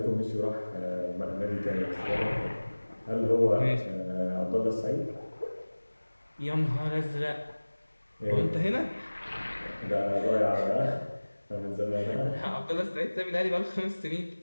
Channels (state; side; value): inverted; both; correlation -1.00